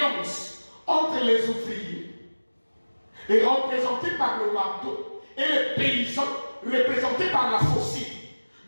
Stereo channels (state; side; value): inverted; both; correlation -1.00